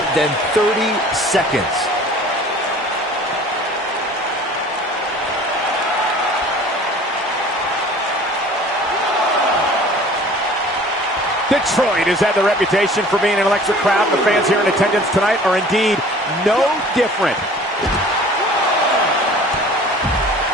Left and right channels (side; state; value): both; normal; correlation 0.47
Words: than 30 seconds. Detroit has had the reputation for being an electric crowd. The fans here in attendance tonight are indeed no different.